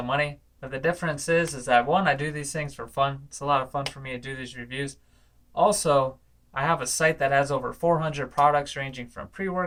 money, but the difference is that one, I do these things for fun. It's a lot of fun for me to do these reviews. Also, I have a site that has over 400 products ranging from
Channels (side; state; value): both; identical; correlation 1.00